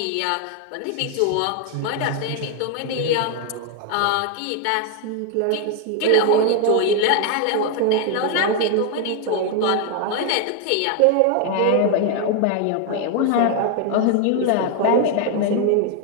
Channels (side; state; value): both; different; correlation 0.01